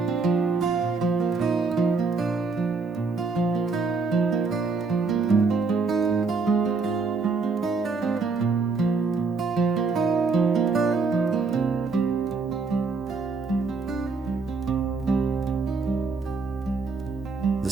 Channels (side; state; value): left; quieter; 4.4 dB